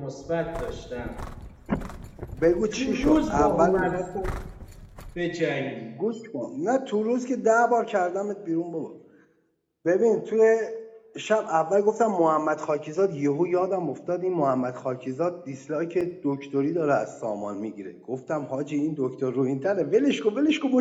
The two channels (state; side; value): identical; both; correlation 1.00